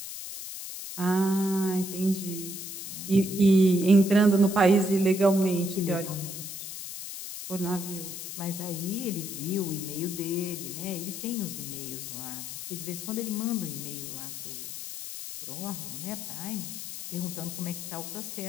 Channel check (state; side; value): noise; left; hiss, 8 dB below the sound